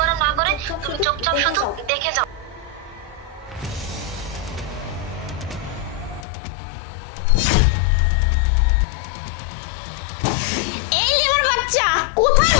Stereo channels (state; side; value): drops out; right; at 6.2 s